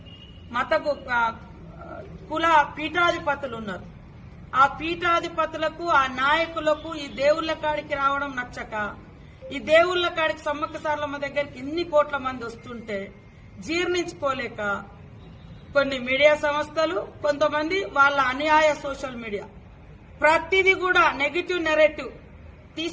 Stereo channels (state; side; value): identical; both; correlation 1.00